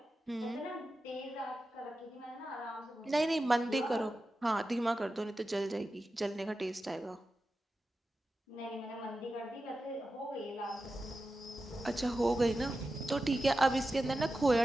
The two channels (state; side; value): normal; both; correlation 0.92